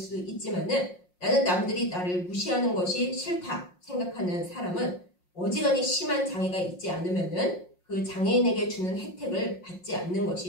있지만은 나는 남들이 나를 무시하는 것이 싫다 생각하는 사람은 어지간히 심한 장애가 있지 않으면은 그 장애인에게 주는 혜택을 받지 않는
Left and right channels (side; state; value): right; late; 5.6 ms